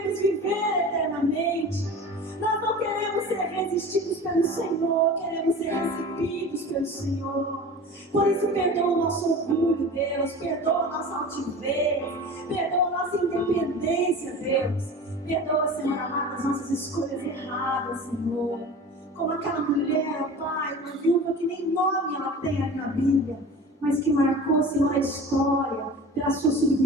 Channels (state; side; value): normal; both; correlation 0.36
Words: viver eternamente. Nós não queremos ser resistidos pelo Senhor, queremos ser recebidos pelo Senhor. Por isso, perdoa o nosso orgulho, Deus, perdoa a nossa altivez, perdoa a nossa independência, Deus. Perdoa, Senhor amado, as nossas escolhas erradas, Senhor. Como aquela mulher, Pai, uma viúva que nem nome ela tem ali na Bíblia, mas que marcou, Senhor, a história pela sua